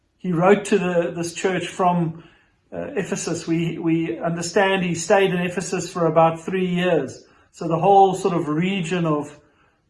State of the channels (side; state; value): both; identical; correlation 1.00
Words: He wrote to this church from Ephesus. We understand he stayed in Ephesus for about 3 years. So the whole sort of region